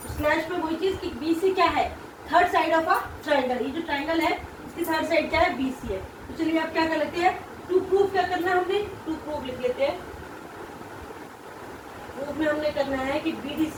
स्लैश में वही चीज कि BC क्या है, third side of a triangle. ये जो ट्रायंगल है इसकी थर्ड साइड क्या है, BC है। तो चलिए आप क्या कर लेते हैं, टू प्रूफ क्या करना है हमने, टू प्रूफ लिख लेते हैं। प्रूफ में हमने करना है कि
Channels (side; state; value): both; identical; correlation 1.00